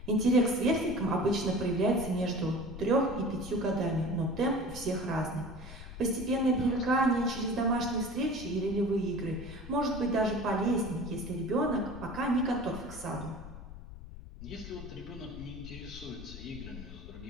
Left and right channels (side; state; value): left; noise; rumble, 13 dB below the sound